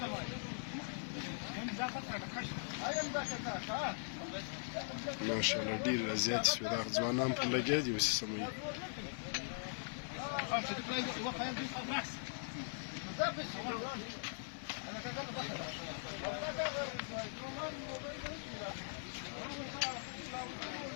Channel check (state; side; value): silent; right; 50 dB below the other